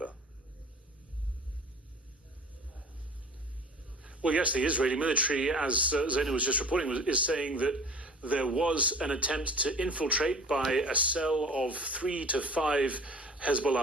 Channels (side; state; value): both; normal; correlation 0.43